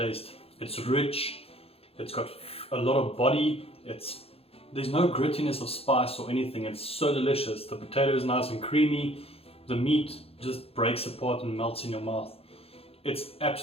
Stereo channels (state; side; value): late; right; 0.28 ms